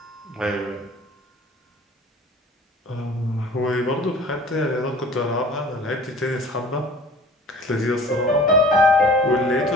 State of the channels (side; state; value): both; normal; correlation 0.46